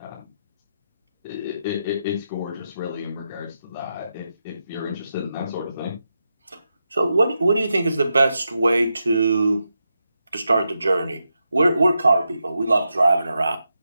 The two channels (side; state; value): both; inverted; correlation -0.86